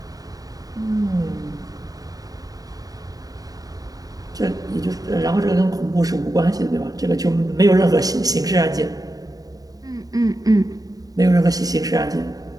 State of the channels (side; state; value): left; late; 0.18 ms